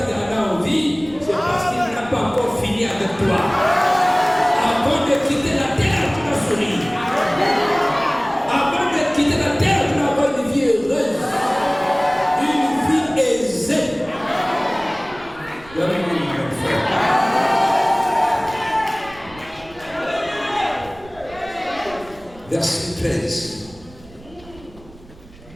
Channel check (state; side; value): noise; right; rumble, 22 dB below the sound